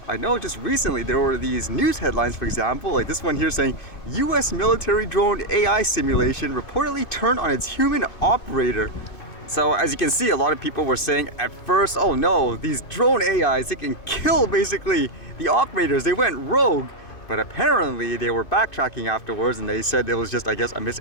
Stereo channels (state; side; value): late; right; 2.5 ms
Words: I know just recently there were these news headlines, for example, like this one here saying US military drone AI simulation reportedly turned on its human operator. So as you can see, a lot of people were saying at first, oh no, these drone AIs, they can kill basically the operators, they went rogue. But apparently they were backtracking afterwards and they said it was just, I guess, a